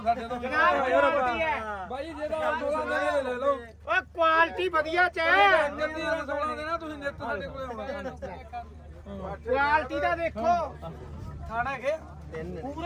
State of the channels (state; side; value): identical; both; correlation 1.00